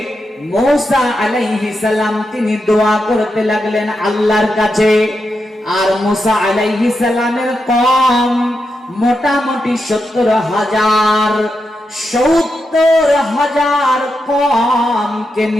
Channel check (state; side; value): normal; both; correlation 0.86